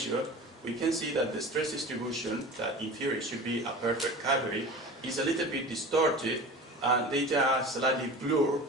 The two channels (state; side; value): normal; both; correlation 0.35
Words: we can see that the stress distribution, that in theory should be a perfect cavity, is a little bit distorted, and data are slightly blurred,